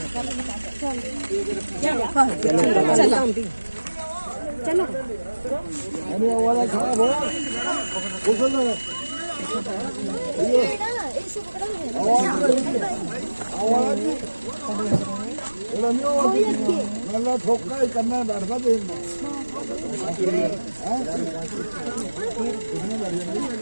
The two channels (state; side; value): inverted; both; correlation -1.00